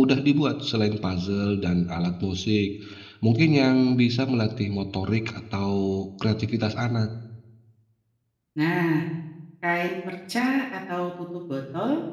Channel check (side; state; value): both; identical; correlation 1.00